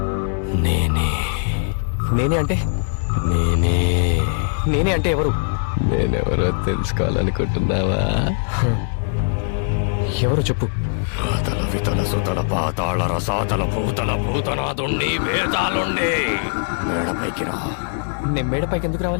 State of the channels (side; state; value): right; silent; digital silence